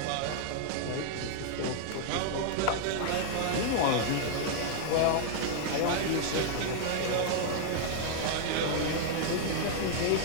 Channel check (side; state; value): both; different; correlation -0.01